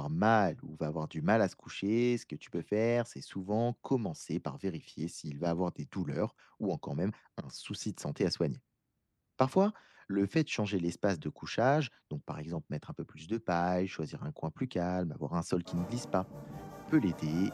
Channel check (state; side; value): identical; both; correlation 1.00